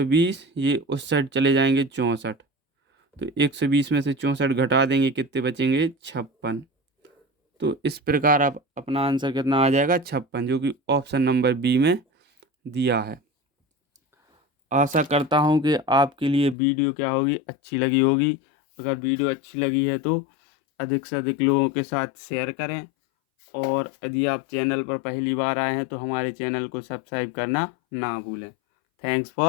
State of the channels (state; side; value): drops out; right; at 16.6 s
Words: ये उस साइड चले जाएंगे 64। तो 120 में से 64 घटा देंगे, कितने बचेंगे, 56। तो इस प्रकार आप अपना आंसर कितना आ जाएगा, 56, जो कि ऑप्शन नंबर बी में दिया है। आशा करता हूँ कि आपके लिए वीडियो क्या होगी, अच्छी लगी होगी। अगर वीडियो अच्छी लगी है तो अधिक से अधिक लोगों के साथ शेयर करें, और यदि आप चैनल पर पहली बार आए हैं तो हमारे चैनल को सब्सक्राइब करना ना भूलें। Thanks